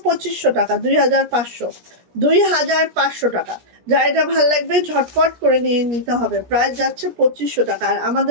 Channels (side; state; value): left; late; 17 ms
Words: 2500 টাকা, 2500 টাকা। যা এটা ভালো লাগবে ঝটপট করে নিয়ে নিতে হবে। প্রাইস যাচ্ছে 2500 টাকা। আর